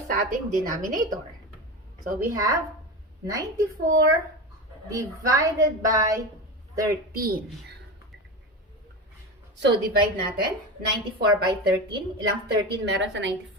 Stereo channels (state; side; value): normal; both; correlation 0.23